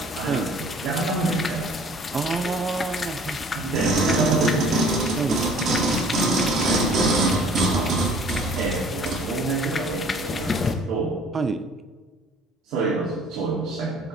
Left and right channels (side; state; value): both; normal; correlation 0.52